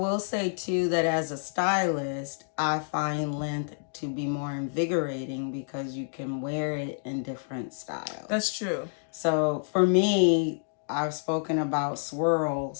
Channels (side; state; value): right; silent; digital silence